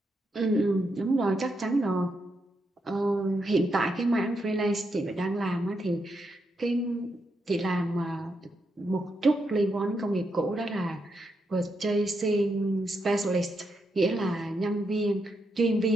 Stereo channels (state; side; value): normal; both; correlation 0.82